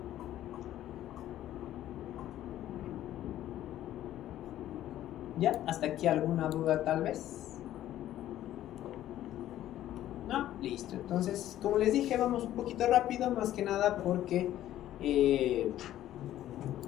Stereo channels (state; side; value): quieter; right; 12.9 dB